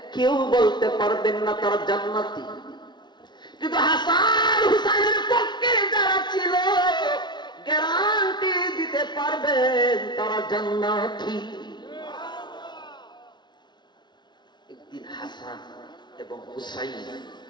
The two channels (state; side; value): late; right; 0.21 ms